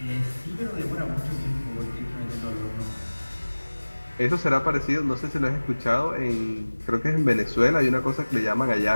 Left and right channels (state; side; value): inverted; both; correlation -1.00